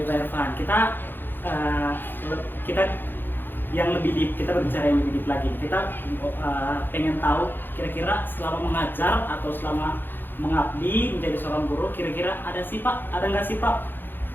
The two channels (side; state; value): right; late; 0.097 ms